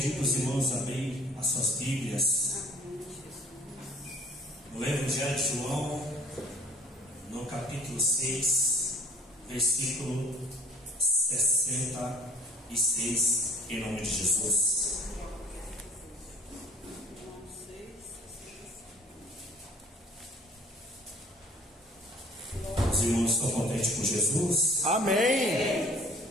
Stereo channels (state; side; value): normal; both; correlation 0.54